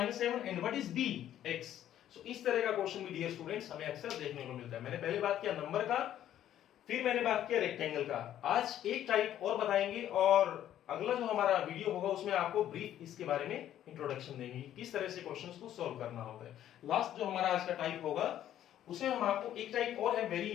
7, and what is b, x। So इस तरह का क्वेश्चन भी डियर स्टूडेंट्स हमें अक्सर देखने को मिलता है। मैंने पहले बात किया नंबर का, फिर मैंने बात किया रेक्टेंगल का, आज एक टाइप और बताएंगे, और अगला जो हमारा वीडियो होगा उसमें आपको ब्रीफ इसके बारे में इंट्रोडक्शन देंगे, किस तरह से क्वेश्चंस को सॉल्व करना होता है। लास्ट जो हमारा आज का टाइप होगा उसमें हम आपको एक टाइप और है वेरी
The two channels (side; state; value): right; quieter; 11.5 dB